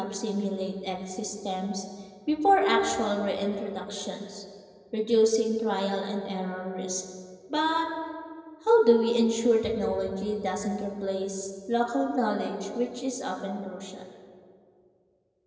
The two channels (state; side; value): identical; both; correlation 1.00